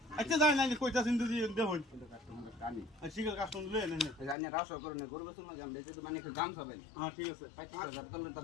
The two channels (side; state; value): right; drops out; at 4.4 s